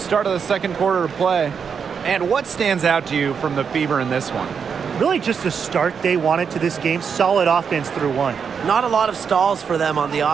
of the second quarter of play. And what stands out to you from the Fever in this one? Really just the start they wanted to this game. Solid offense through 1. Not a lot of stalls for them on the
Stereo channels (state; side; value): quieter; left; 6.6 dB